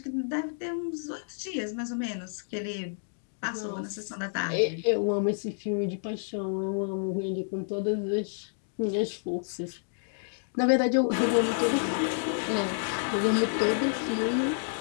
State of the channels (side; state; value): right; silent; digital silence